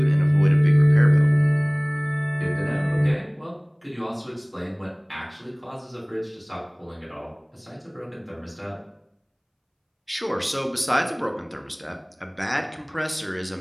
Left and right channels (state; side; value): identical; both; correlation 1.00